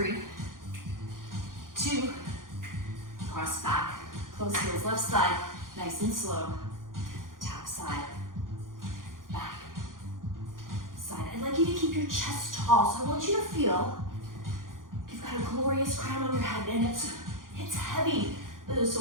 2, cross back. Close heels, left side, nice and slow. Tap side, back, side. I'd like you to keep your chest tall, so I want you to feel you've got a glorious crown on your head, and it's heavy.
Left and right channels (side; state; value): left; late; 0.90 ms